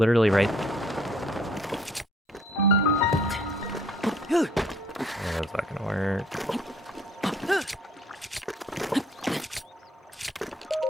right. That's not gonna work.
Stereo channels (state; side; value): normal; both; correlation 0.61